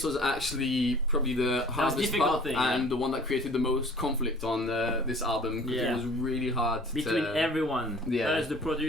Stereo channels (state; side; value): normal; both; correlation 0.49